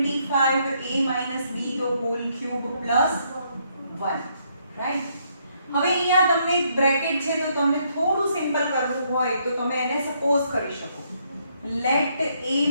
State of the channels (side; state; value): both; inverted; correlation -0.72